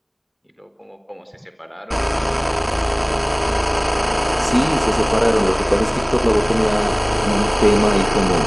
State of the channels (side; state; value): both; identical; correlation 1.00